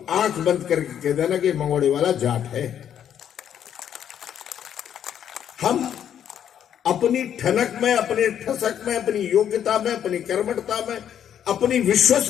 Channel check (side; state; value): right; quieter; 9.5 dB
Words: आंख बंद करके कह देना कि मंगोड़े वाला जाट है। हम अपनी ठनक में, अपने ठसक में, अपनी योग्यता में, अपनी कर्मठता में, अपनी